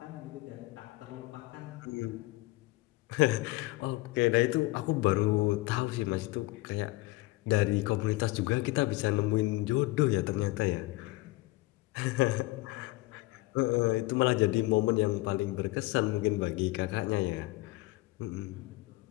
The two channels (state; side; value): quieter; right; 20.7 dB